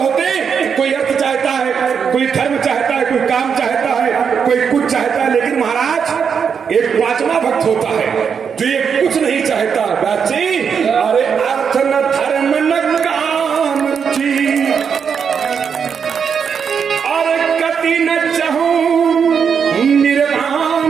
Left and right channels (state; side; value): quieter; left; 6.7 dB